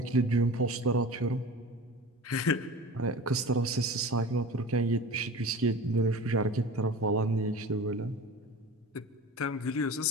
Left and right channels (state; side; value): normal; both; correlation 0.35